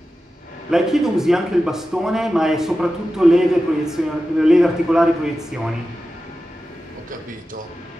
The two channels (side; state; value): both; normal; correlation 0.93